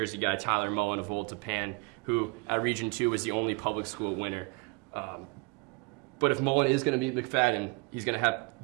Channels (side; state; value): left; quieter; 27.4 dB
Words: guy, Tyler Mullen of Old Tapan, who at Region 2 was the only public school winner. But if Mullen is going to beat McFadden, he's going to have to